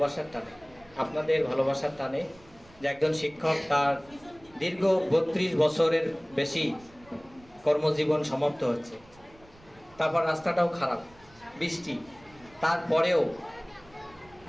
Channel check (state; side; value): noise; right; rumble, 26 dB below the sound